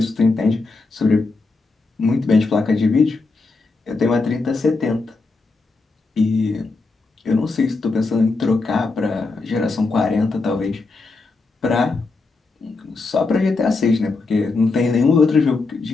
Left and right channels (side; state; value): right; quieter; 3.8 dB